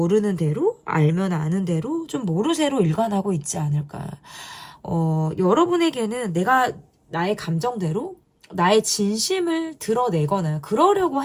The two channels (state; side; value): identical; both; correlation 1.00